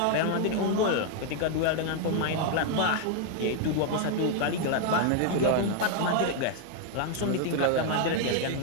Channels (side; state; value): both; different; correlation 0.00